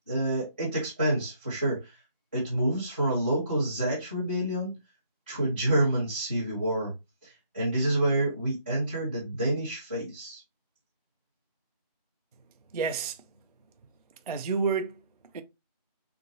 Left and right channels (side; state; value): both; inverted; correlation -0.67